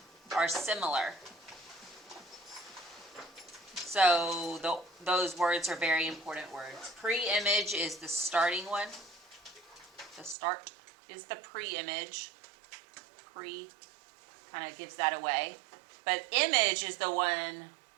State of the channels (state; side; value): drops out; left; at 10.4 s